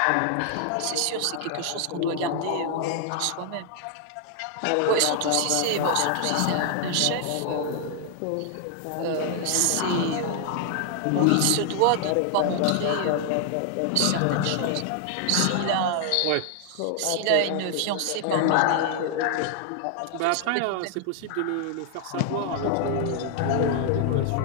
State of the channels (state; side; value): different; both; correlation 0.00